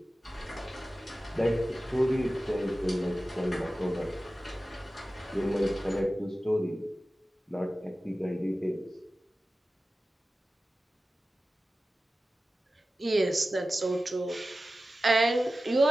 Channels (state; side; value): normal; both; correlation 0.95